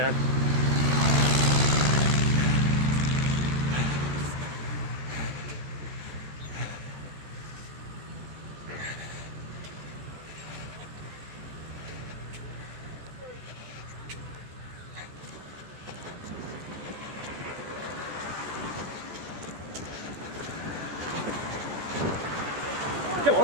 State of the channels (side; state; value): left; late; 13 ms